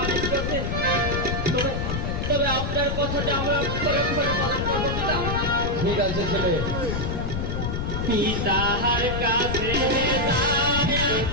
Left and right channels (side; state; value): left; noise; rumble, 2 dB below the sound